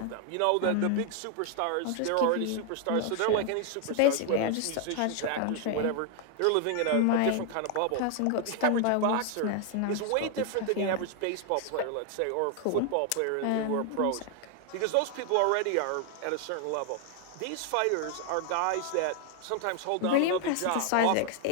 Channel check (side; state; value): both; different; correlation 0.00